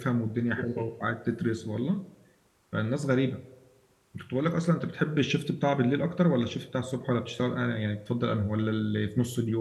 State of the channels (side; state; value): both; identical; correlation 1.00